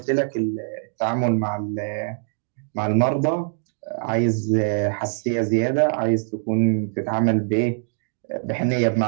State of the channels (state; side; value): silent; left; digital silence